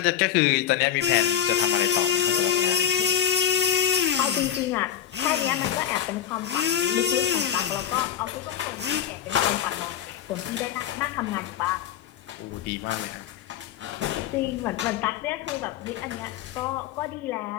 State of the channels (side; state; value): right; quieter; 9.9 dB